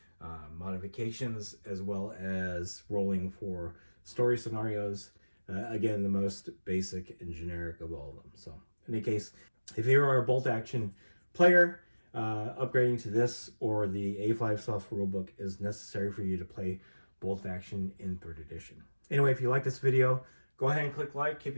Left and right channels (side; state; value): both; inverted; correlation -1.00